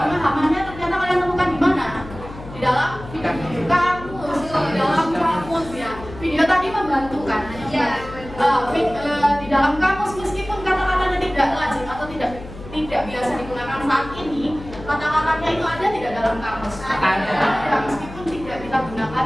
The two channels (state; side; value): noise; left; hum, 14 dB below the sound